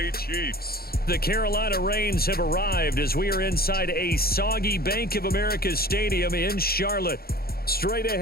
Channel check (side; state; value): right; late; 0.44 ms